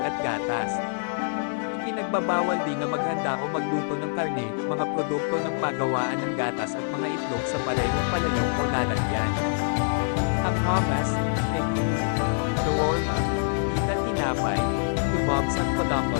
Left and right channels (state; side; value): silent; right; digital silence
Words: at gatas. Ipinagbabawal din na maghanda o magluto ng karne, mga produkto ng pagawaan ng gatas at mga itlog sa parehong palayok o lalagyan. Ang hummus, tahini, shawarma, pita tinapay, kebabs at